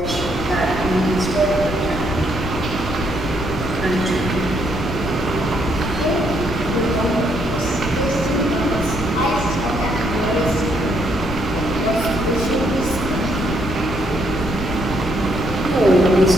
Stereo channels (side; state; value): left; noise; rumble, 9 dB below the sound